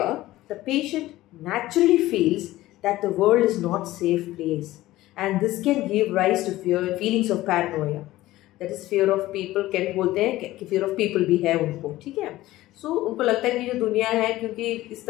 the patient naturally feels that the world is not safe place, and this can give rise to fear feelings of paranoia, that is fear of people. कैन बोलते हैं कि fear of people भी है उनको, ठीक है। सो उनको लगता है कि जो दुनिया है, क्योंकि इस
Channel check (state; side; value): quieter; right; 16.5 dB